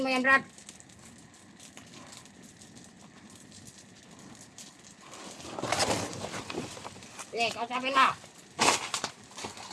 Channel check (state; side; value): identical; both; correlation 1.00